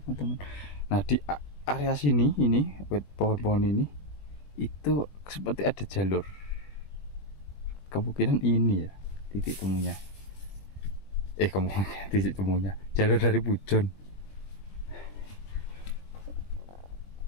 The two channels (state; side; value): late; right; 20 ms